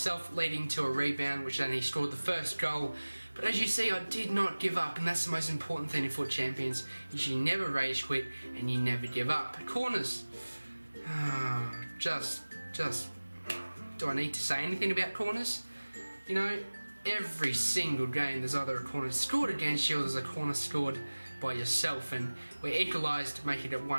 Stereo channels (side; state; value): both; inverted; correlation -1.00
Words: leading to a rebound, which then he scored the first goal. But as you see, I did not give up, and that's the most important thing in FUT Champions. Is you never rage quit and you never give up. Corners. Just. Do I need to say anything about corners? You know, every single game there's either a corner scored against you or there's a corner scored by yourself, and we equalised, making it